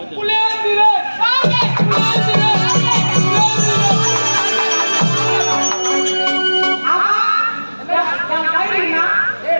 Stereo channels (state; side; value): inverted; both; correlation -1.00